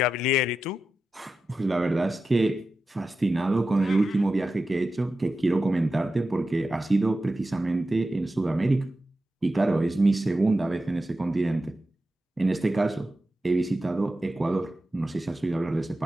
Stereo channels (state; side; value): normal; both; correlation 0.92